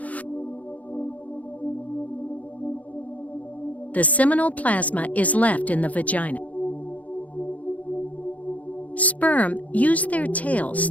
The seminal plasma is left in the vagina. Sperm use their tails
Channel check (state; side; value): late; right; 0.071 ms